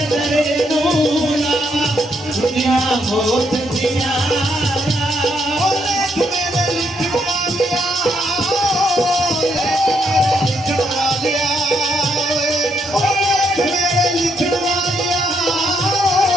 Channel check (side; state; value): both; normal; correlation 0.75